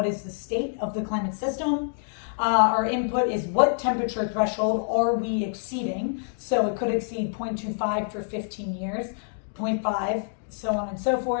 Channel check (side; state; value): right; silent; digital silence